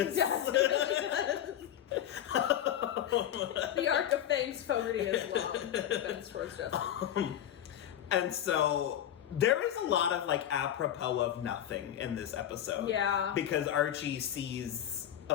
The arc of Fangs Fogarty is long, but it bends towards justice. And so there is a lot of, like, apropos of nothing in this episode. Yeah. Because Archie sees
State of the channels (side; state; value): right; quieter; 10.9 dB